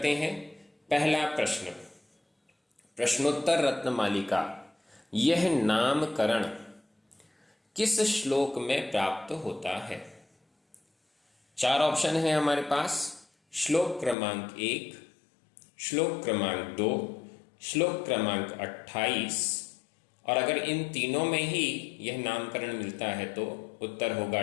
हैं। पहला प्रश्न, प्रश्नोत्तर रत्नमालिका यह नामकरण किस श्लोक में प्राप्त होता है? 4 ऑप्शन है हमारे पास। श्लोक क्रमांक 1, श्लोक क्रमांक 2, श्लोक क्रमांक 28 और अगर इन तीनों में ही यह नामकरण मिलता है तो उत्तर होगा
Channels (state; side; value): drops out; right; at 14.2 s